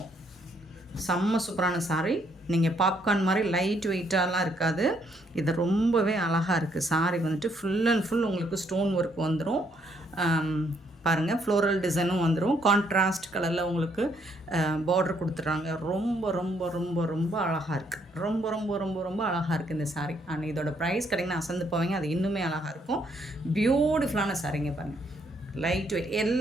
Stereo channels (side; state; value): both; normal; correlation 0.71